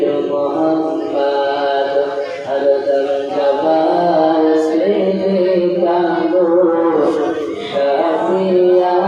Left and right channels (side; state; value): both; identical; correlation 1.00